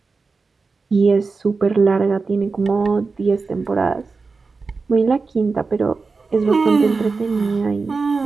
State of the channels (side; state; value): left; quieter; 4.3 dB